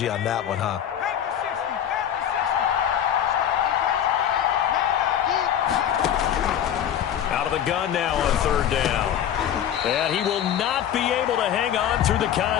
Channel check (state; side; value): quieter; right; 9.9 dB